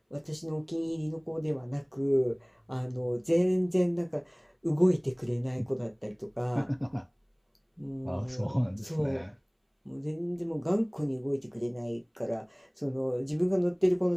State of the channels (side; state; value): both; identical; correlation 1.00